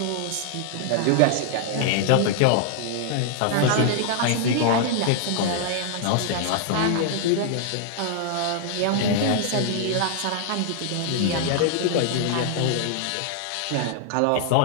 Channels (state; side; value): different; both; correlation 0.00